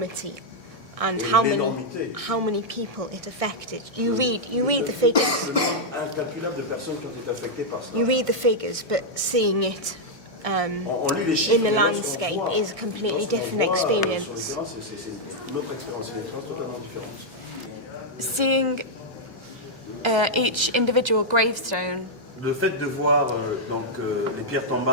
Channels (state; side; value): normal; both; correlation -0.04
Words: and Et how l'énormité. many people it affected. You read the figures. Le nombre incalculable de personnes qui ont été affectées par cela. You read the figures, but seeing it On lit les chiffres, in the mais lorsqu'on landscape voit- is a completely lorsqu'on different voit, sur le experience. terrain, c'est une autre expérience, c'est une expérience totalement différente. Seeing each individual gravestone Le fait de voir les pierres